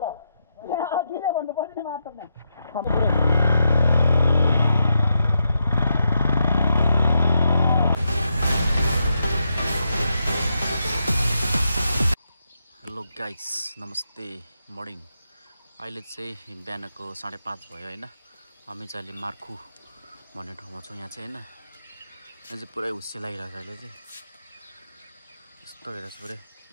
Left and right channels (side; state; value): both; inverted; correlation -0.84